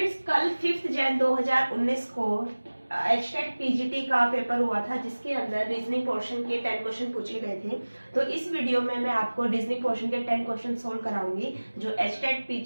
कल 5 जनवरी 2019 को एचटेट पीजीटी का पेपर हुआ था, जिसके अंदर रीजनिंग पोर्शन के 10 क्वेश्चन पूछे गए थे। तो इस वीडियो में मैं आपको रीजनिंग पोर्शन के 10 क्वेश्चन सोल्व कराऊंगी, जो एचटेट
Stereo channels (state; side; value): inverted; both; correlation -1.00